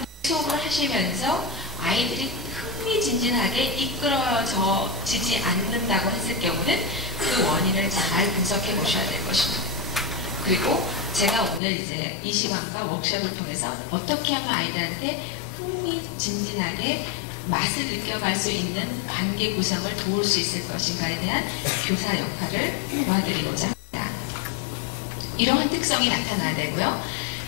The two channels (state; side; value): drops out; right; at 11.6 s